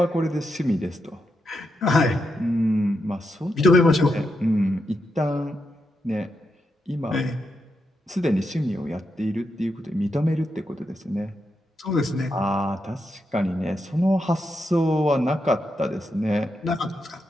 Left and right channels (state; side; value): normal; both; correlation 0.84